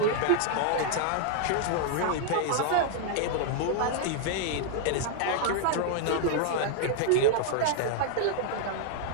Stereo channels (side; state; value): both; different; correlation -0.01